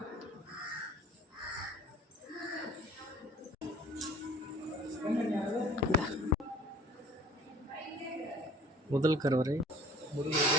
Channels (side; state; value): both; normal; correlation 0.49